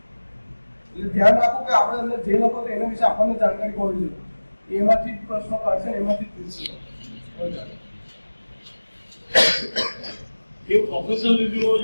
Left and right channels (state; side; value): inverted; both; correlation -1.00